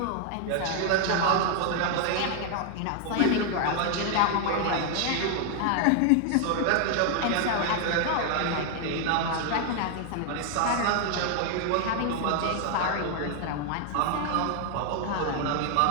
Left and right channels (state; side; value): different; both; correlation 0.00